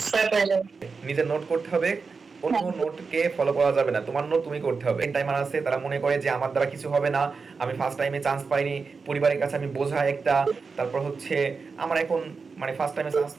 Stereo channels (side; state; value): left; quieter; 4.8 dB